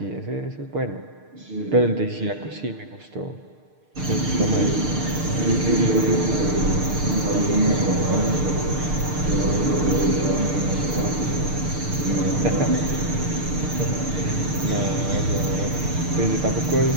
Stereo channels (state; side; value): late; left; 6.6 ms